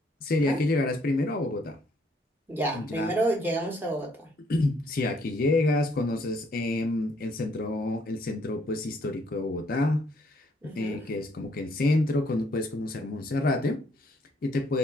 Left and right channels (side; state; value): both; normal; correlation 0.67